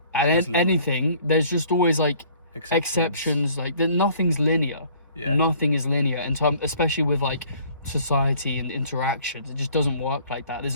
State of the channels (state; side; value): inverted; both; correlation -0.56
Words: and anything, there's just always like exceptions. Like nothing's linear. Yeah. Nothing is linear, and especially with like society and interactions, it just doesn't work like that.